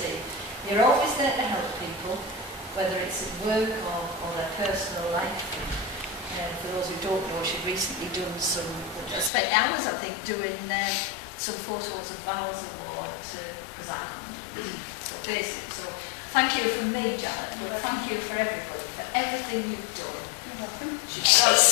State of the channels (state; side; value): drops out; right; at 9.3 s